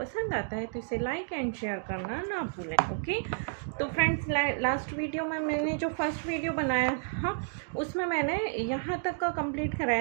आता है तो इसे लाइक एंड शेयर करना ना भूलें। ओके, तो फ्रेंड्स, लास्ट वीडियो में मैंने जो फर्स्ट वीडियो बनाया था उसमें मैंने यहाँ तक का कंप्लीट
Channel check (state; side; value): silent; left; digital silence